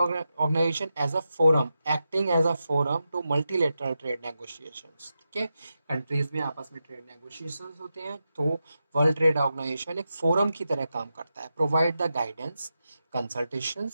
as a forum, acting as a forum to multilateral trade negotiations, ठीक है। कंट्रीज में आपस में ट्रेड नेगोशिएशंस होते हैं, तो वर्ल्ड ट्रेड ऑर्गेनाइजेशन एक फोरम की तरह काम करता है। Provide the guidance,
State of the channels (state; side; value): inverted; both; correlation -0.89